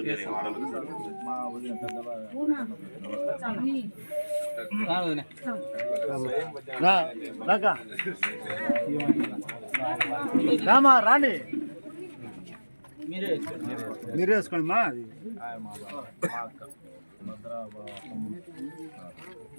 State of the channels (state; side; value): inverted; both; correlation -1.00